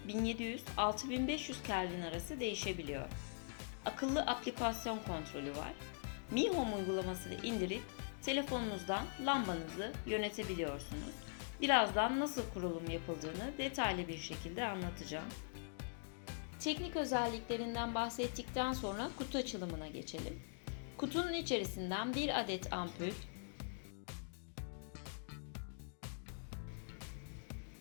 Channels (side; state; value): right; silent; digital silence